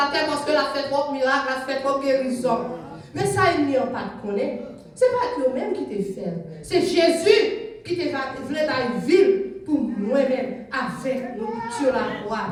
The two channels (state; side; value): identical; both; correlation 1.00